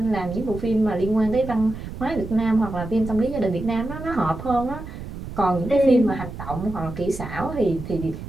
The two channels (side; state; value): right; noise; rumble, 10 dB below the sound